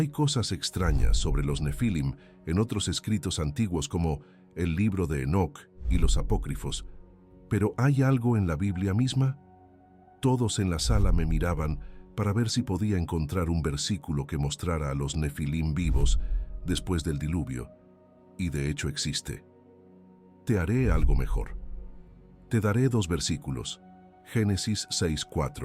cosas extrañas sobre los Nefilim en otros escritos antiguos como el libro de Enoc y los apócrifos. ¿Pero hay algo en la Biblia misma? Todos en la sala me miraban para ver si podía encontrar un versículo que mostrara a los Nefilim vivos después del diluvio. Y de hecho existe. Te haré algo mejor. Te daré dos versículos. Génesis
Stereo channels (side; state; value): both; identical; correlation 1.00